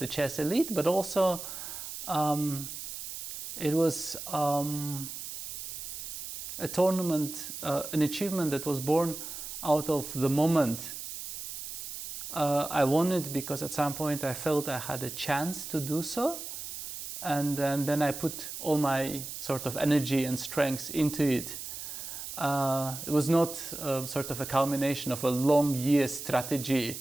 chess elite, but also it was a tournament, an achievement that was born out of the moment. I won it because at some point I felt I had a chance to do so, and then I put all my sort of energy and strength into it. It was not sort of a culmination of a long year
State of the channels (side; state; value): right; noise; hiss, 8 dB below the sound